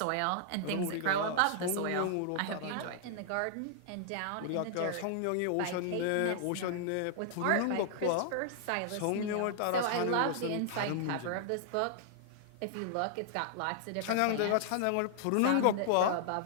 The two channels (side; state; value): both; different; correlation -0.01